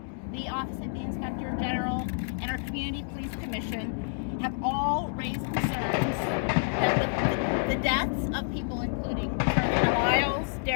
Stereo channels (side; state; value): right; silent; digital silence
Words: the Office of the Inspector General, and our Community Police Commission have all raised concerns that the deaths of people including Carolina Lyles,